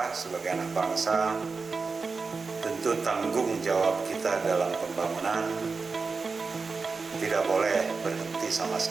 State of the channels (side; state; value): left; quieter; 4.5 dB